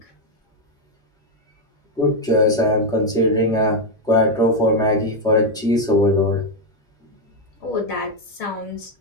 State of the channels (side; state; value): both; normal; correlation 0.03